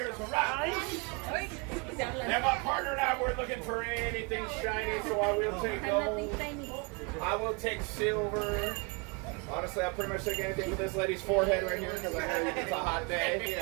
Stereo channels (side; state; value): left; quieter; 31.3 dB